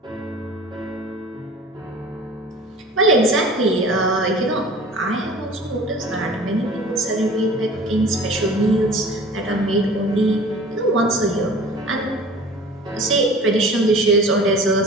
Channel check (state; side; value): normal; both; correlation 0.43